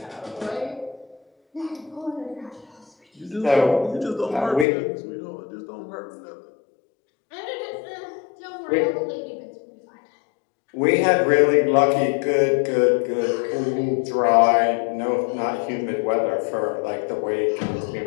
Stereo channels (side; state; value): right; drops out; at 4.7 s